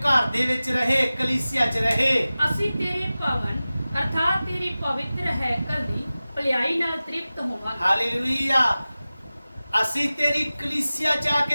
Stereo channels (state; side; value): inverted; both; correlation -0.97